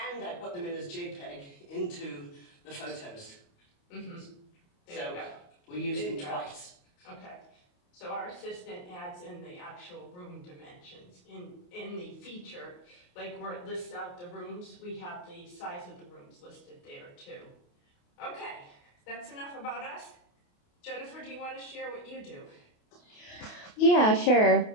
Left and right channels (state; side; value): late; right; 28 ms